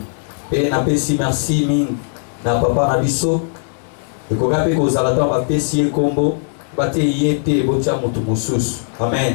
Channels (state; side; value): silent; right; digital silence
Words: Pe na pesi merci ming na papa na biso. Et qu'on rappelle qu'aux alatons va pessier combo, bate yete botia mutu musus.